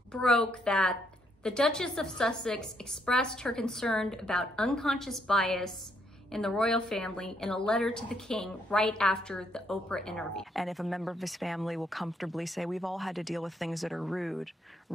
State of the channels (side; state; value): both; normal; correlation 0.73